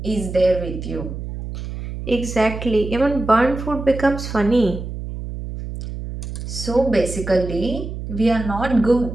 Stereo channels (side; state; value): right; noise; hum, 8 dB below the sound